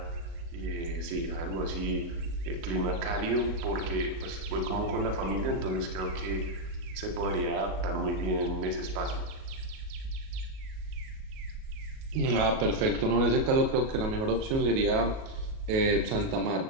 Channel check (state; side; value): late; left; 37 ms